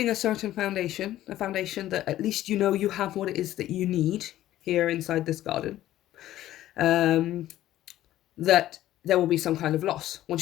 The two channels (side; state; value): right; quieter; 13.7 dB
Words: a certain foundation, a foundation that at least you know you have what it is that you need here inside this garden, that there will be some kind of loss.